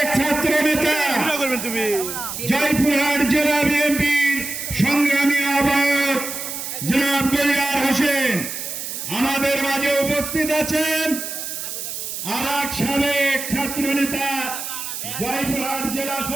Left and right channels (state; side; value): noise; right; hiss, 6 dB below the sound